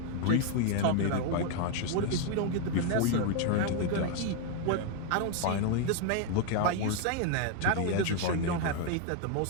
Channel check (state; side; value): different; both; correlation 0.01